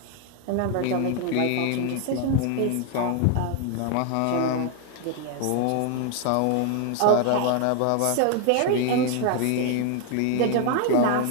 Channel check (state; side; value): different; both; correlation 0.00